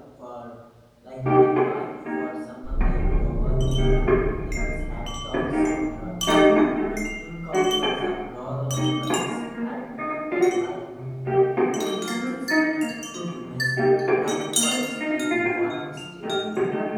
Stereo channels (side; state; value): both; identical; correlation 1.00